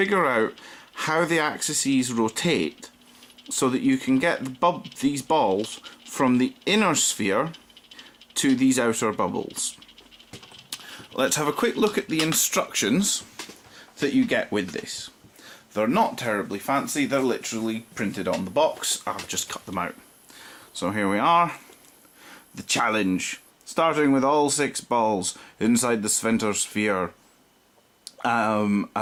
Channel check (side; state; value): both; identical; correlation 1.00